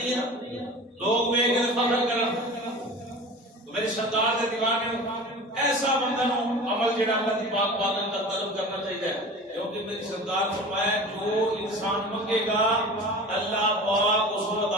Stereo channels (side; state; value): both; normal; correlation 0.37